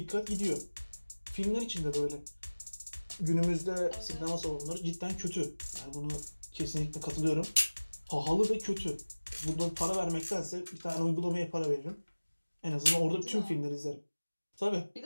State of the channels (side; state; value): both; inverted; correlation -1.00